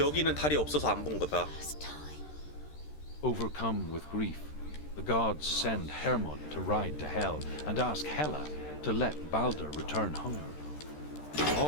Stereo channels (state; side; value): late; right; 13 ms